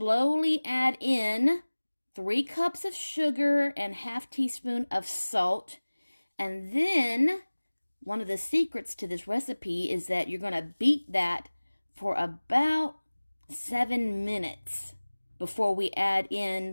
add in 3 cups of sugar and ½ teaspoon of salt. And then one of the secrets to this recipe is that you're going to beat that for about 7 minutes before we add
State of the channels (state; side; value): inverted; both; correlation -1.00